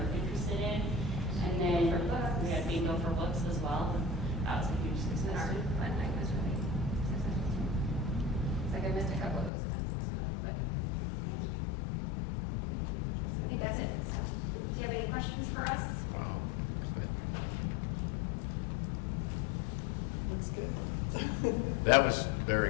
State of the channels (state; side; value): drops out; right; at 9.5 s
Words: interested in. And then we had bingo for books as well. That was a huge And success. our fun night was really successful too. It's like I missed a couple of those kinds of stuff, but I think that's it. So, do you have any questions for us? Wow. Looks good. That was very